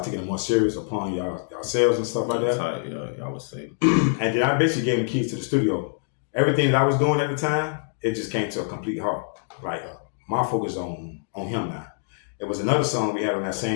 taking it more serious upon yourselves and stuff like that. Y'all would say. And then I basically gave him keys to the studio. Everything that I was doing at the time, it just came to a complete halt. Like, my focus on him now. It was another song we had on that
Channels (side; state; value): right; silent; digital silence